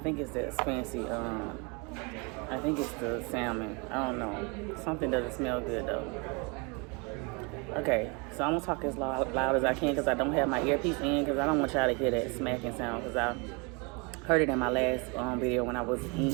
it's that fancy. I think it's the salmon. I don't know. Something doesn't smell good though. Okay, so I'm gonna talk as loud as I can because I don't have my earpiece in because I don't want y'all to hear that smacking sound because I heard it in my last video when I was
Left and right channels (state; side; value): quieter; left; 30.9 dB